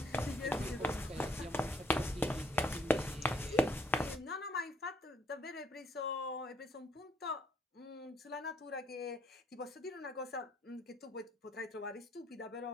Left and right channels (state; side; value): normal; both; correlation 0.68